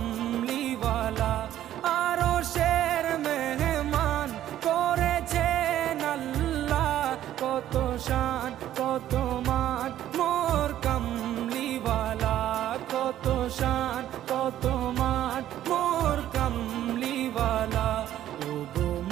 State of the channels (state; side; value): quieter; left; 12.3 dB